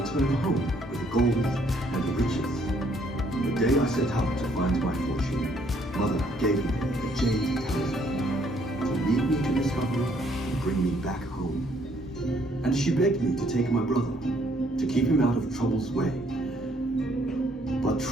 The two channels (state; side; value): normal; both; correlation 0.66